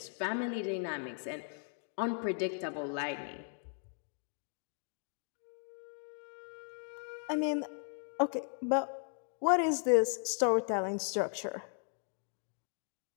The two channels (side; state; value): right; silent; 53 dB below the other